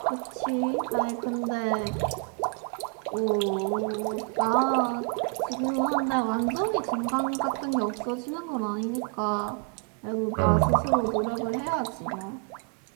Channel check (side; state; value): left; quieter; 34.7 dB